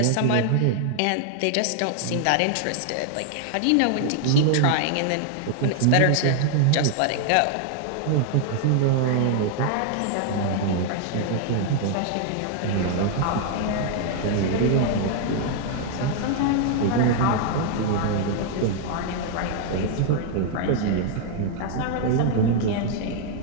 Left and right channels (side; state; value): both; different; correlation 0.00